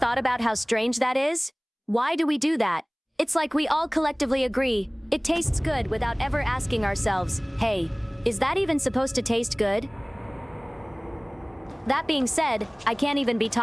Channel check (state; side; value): identical; both; correlation 1.00